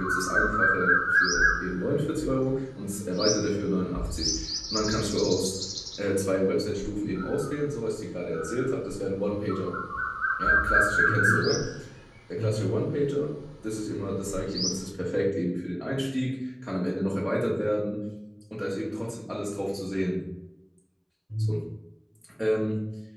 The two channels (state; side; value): identical; both; correlation 1.00